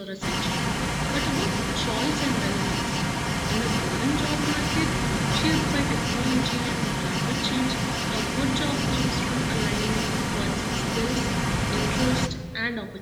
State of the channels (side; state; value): both; identical; correlation 1.00